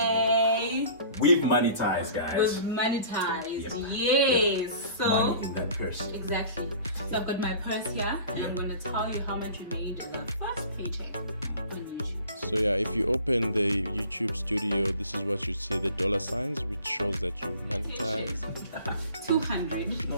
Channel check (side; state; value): both; inverted; correlation -0.45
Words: We've monetized, guys. We've monetized. Yes. So Money in that purse. exactly. So I've got my purse here, and I'm gonna tell you how much we made in our first paycheck on YouTube. So yeah, if you open the YouTube studio, this is what you see, the dollar signs, which shows that you've monetized. 200.